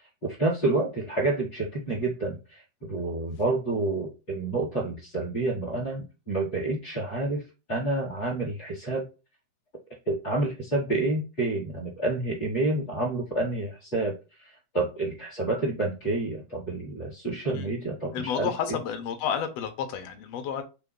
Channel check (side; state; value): right; late; 8.1 ms